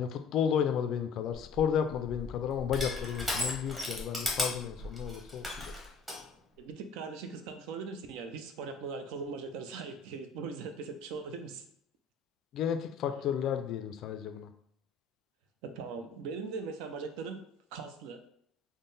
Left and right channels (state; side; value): quieter; right; 4.7 dB